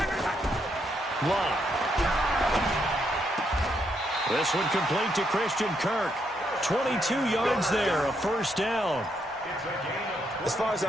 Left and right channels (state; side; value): normal; both; correlation 0.77